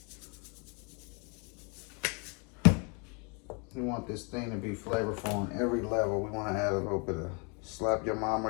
We want this thing to be flavorful on every level. We want to add a little bit of Slap Your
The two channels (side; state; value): right; quieter; 34.2 dB